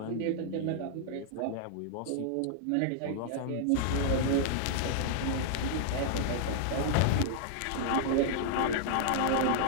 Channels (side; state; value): both; different; correlation -0.01